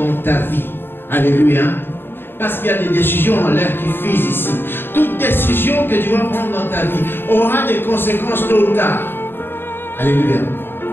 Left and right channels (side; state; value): right; late; 0.10 ms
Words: ta vie, alléluia, parce qu'il y a des décisions en l'air qui fusent ici. Toute décision que tu vas prendre dans ta vie aura des conséquences tôt ou tard. Alléluia.